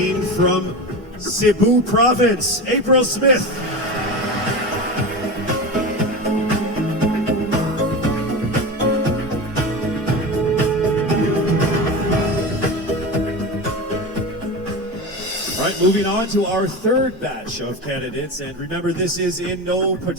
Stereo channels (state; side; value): normal; both; correlation 0.25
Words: from Cebu Province, April Smith. All right, moving on to our third batch of candidates. And remember, this is in no